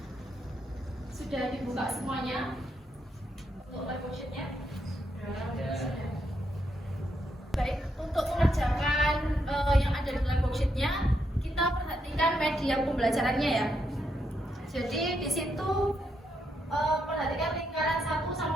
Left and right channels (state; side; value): normal; both; correlation 0.79